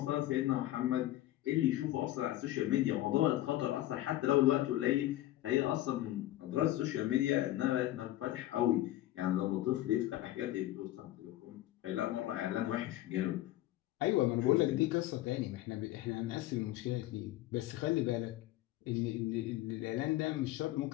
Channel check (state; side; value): quieter; right; 15.2 dB